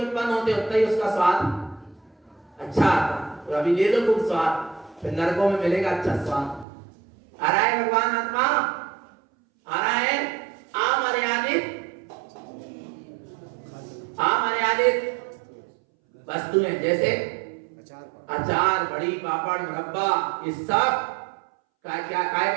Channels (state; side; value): drops out; left; at 6.7 s